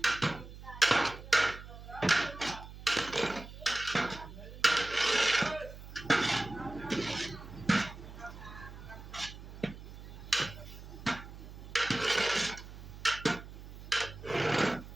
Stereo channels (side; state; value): right; noise; hum, 14 dB below the sound